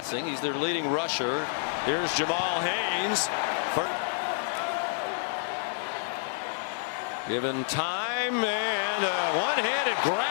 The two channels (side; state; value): right; silent; 57 dB below the other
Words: He's their leading rusher. Here's Jamal Haynes. Given time, and a one-handed